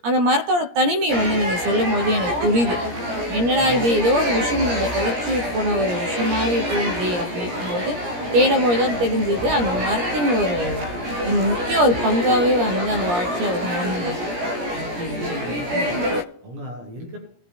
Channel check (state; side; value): late; left; 17 ms